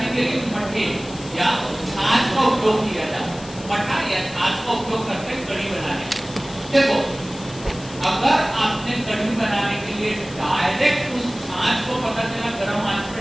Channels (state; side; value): noise; left; hiss, 17 dB below the sound